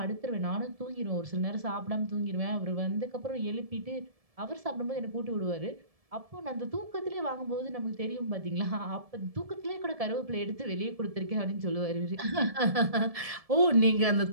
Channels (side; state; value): left; late; 1.7 ms